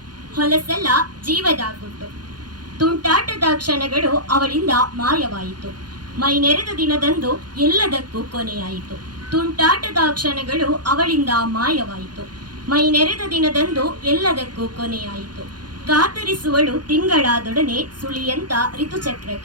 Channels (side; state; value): left; late; 0.70 ms